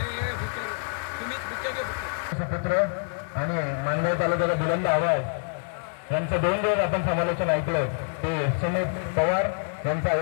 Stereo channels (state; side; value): silent; right; 61 dB below the other